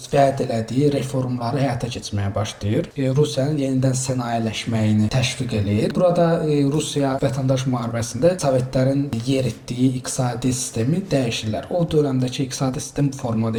vəd elədiyi reformları həyata keçirməyə başlayır. Rusiyanın yenidən sənayeləşməyini təşviq eləyir. Burada Rusiya vətəndaş müharibəsində Sovetlərin yeritdiyi iqtisadi sistemi dəyişirlər. O dövrəmdəki iqtisadi sistem bu formada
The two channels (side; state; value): both; identical; correlation 1.00